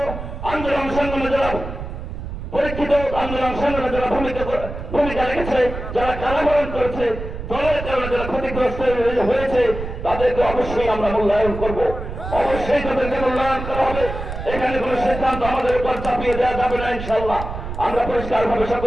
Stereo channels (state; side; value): noise; right; rumble, 8 dB below the sound